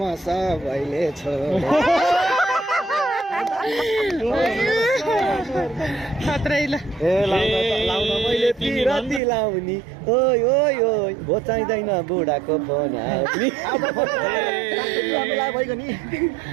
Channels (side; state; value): left; drops out; at 9.2 s